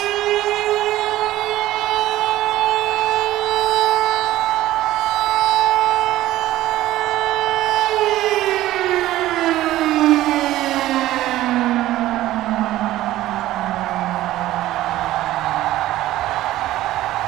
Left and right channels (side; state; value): left; quieter; 15.2 dB